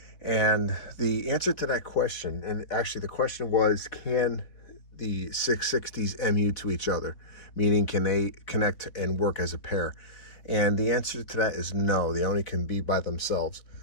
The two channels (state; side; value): late; right; 4.1 ms